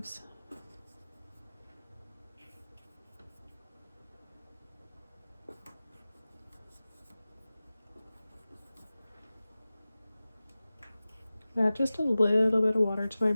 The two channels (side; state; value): both; inverted; correlation -0.97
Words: Add just a little bit of water to my